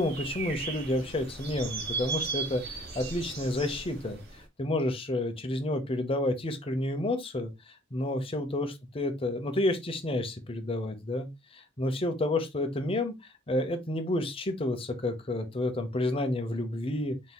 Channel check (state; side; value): normal; both; correlation 0.59